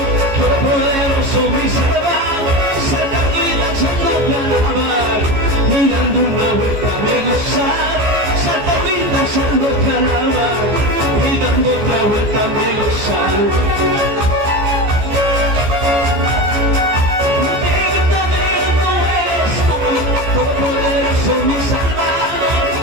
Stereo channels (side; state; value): left; late; 14 ms